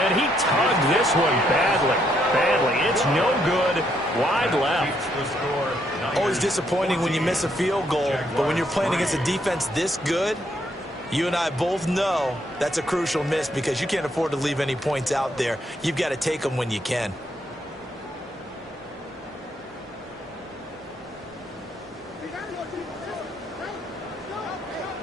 he tugged this one badly. It's no good. Wide left. Always disappointing when you miss a field goal, but when you're playing against a defense this good, you and I both know that's a crucial miss because you can't afford to leave any points out there. You've got to take them when you can.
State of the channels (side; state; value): both; normal; correlation 0.74